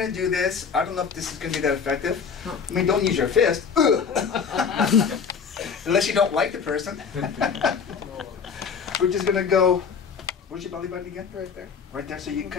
to do this, I don't know if this is going to be that effective. I mean, don't use your fist. Unless you don't like the person. We're just going to go, where's your belly button again? Right there. Right there. So you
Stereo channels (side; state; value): right; quieter; 6.2 dB